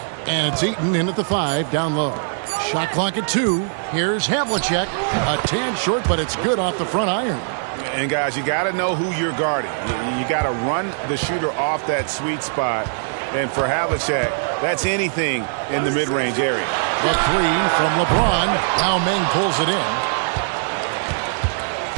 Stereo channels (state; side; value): silent; left; digital silence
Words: And it's Eaton in at the 5, down low. Shot clock at 2. Here's Havlicek. A tad short, but it's good off the front iron. And, guys, you got to know who you're guarding. You got to run the shooter off that sweet spot. And for Havlicek, that's anything in the mid-range area. The 3 from LeBron. Yao Ming pulls it in.